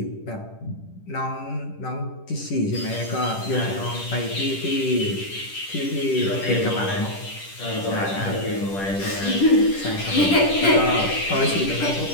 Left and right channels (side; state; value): right; late; 10 ms